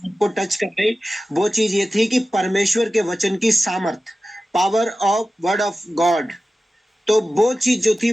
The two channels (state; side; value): normal; both; correlation 0.95